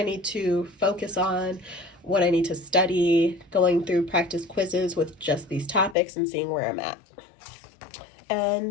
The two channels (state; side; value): drops out; right; at 6.0 s